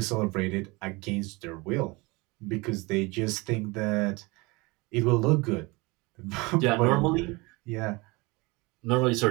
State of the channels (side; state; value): left; quieter; 25.0 dB